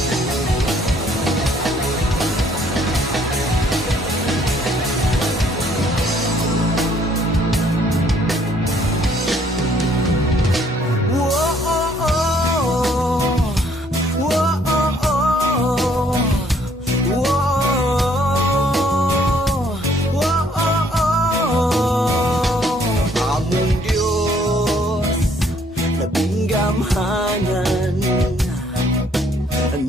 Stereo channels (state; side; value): normal; both; correlation 0.64